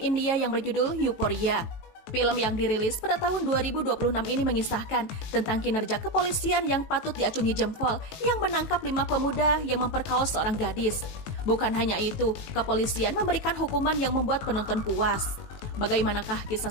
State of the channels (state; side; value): late; right; 18 ms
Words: yang berjudul Euphoria. Film yang dirilis pada tahun 2026 ini mengisahkan tentang kinerja kepolisian yang patut diacungi jempol yang menangkap 5 pemuda yang memperkaos seorang gadis. Bukan hanya itu, kepolisian memberikan hukuman yang membuat penonton puas. Bagaimanakah kisah